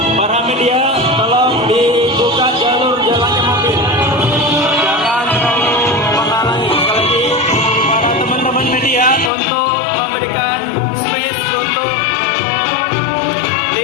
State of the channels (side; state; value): right; drops out; at 9.3 s